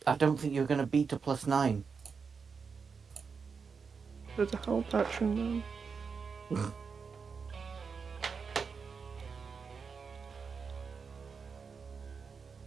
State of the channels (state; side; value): quieter; left; 5.5 dB